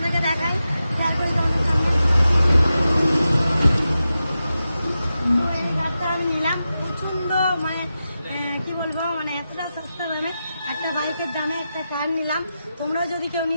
দেখাই। তো এই কারটা আমি নিলাম প্রচন্ড মানে কি বলবো মানে এতটা সস্তা দামে একটা বাইকের দামে একটা কার নিলাম। তোমরাও যদি কেউ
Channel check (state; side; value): inverted; both; correlation -0.91